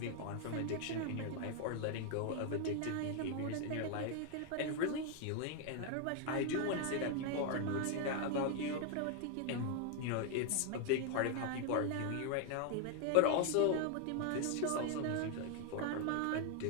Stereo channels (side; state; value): both; different; correlation 0.00